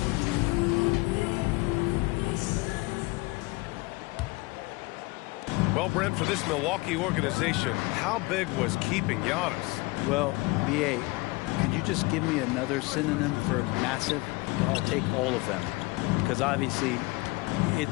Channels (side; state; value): right; quieter; 23.5 dB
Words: Well, Brent, for this Milwaukee organization, how big was keeping Giannis? Well, B.A., could you just give me another synonym for massive? I'll take all of them. Because obviously,